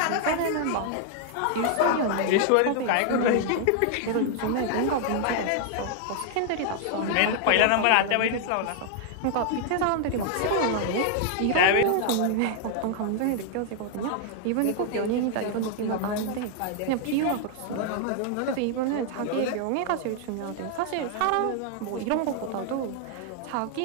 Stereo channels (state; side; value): different; both; correlation 0.00